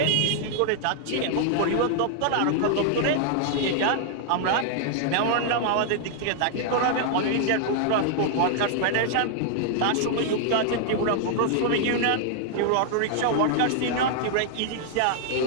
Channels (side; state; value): both; different; correlation -0.01